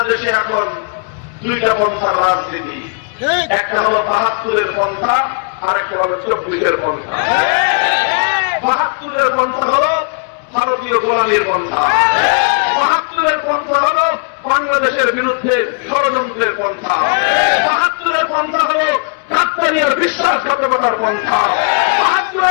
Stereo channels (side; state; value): right; quieter; 39.7 dB